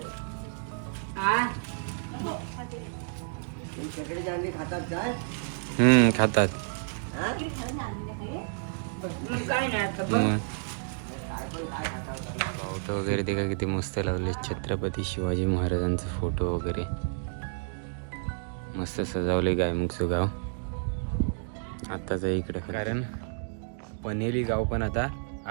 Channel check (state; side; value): silent; left; digital silence